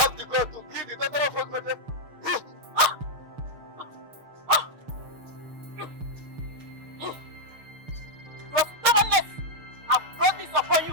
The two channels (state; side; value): late; left; 6.5 ms